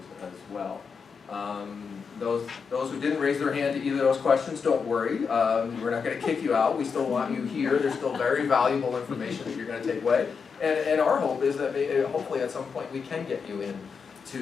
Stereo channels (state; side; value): quieter; right; 5.7 dB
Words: as well. Those who didn't raise their hand to either of those questions, don't worry. We're not going to kick you out. We still want you here. There's still very valuable information that you're going to take away. And our hope is that hopefully at some point we can get you in